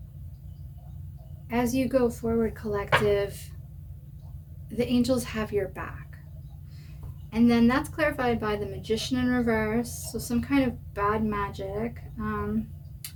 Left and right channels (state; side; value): identical; both; correlation 1.00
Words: as you go forward, collective, the angels have your back. And then that's clarified by the Magician in reverse, so some kind of bad magic,